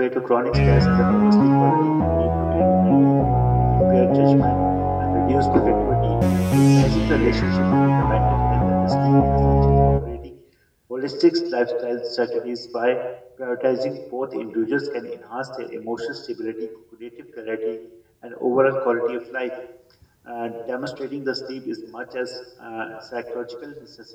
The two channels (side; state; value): both; identical; correlation 1.00